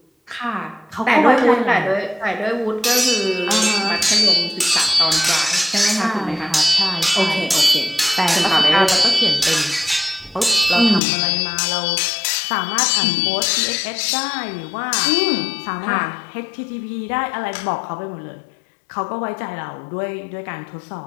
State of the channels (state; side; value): drops out; right; at 11.0 s